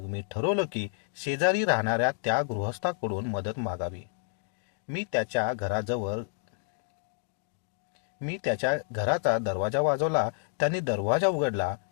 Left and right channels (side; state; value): right; silent; digital silence